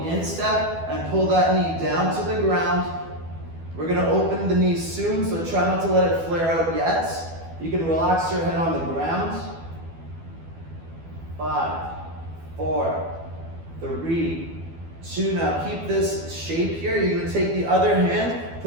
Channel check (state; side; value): late; left; 12 ms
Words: the instep and pull that knee down to the ground. We're going to open the knee soon, so try not to let it flare out yet. You can relax your head on the ground. 5, 4, 3, 2. Now keep this shape here. You're going to take the other hand,